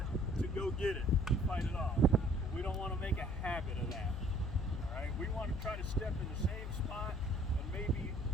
to go get it, fight it off. But we don't want to make a habit of that. All right, we want to try to step in the same spot and maybe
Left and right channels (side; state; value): left; noise; hum, 6 dB below the sound